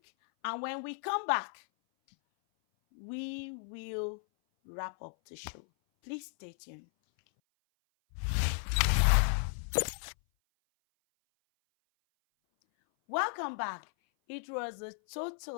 and when we come back, we will wrap up the show. Please stay tuned. Welcome back. It was a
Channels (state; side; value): silent; right; 55 dB below the other